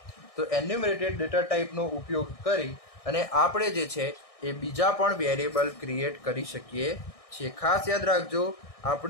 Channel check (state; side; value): late; right; 1.6 ms